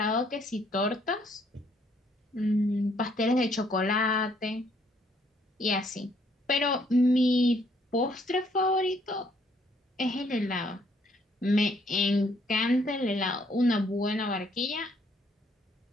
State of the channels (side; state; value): both; normal; correlation 0.67